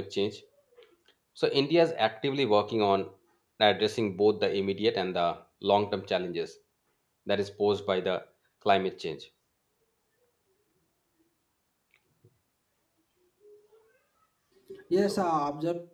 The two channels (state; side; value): identical; both; correlation 1.00